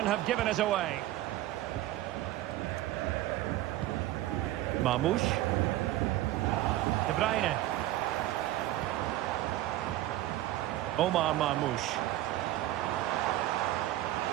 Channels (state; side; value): quieter; left; 15.1 dB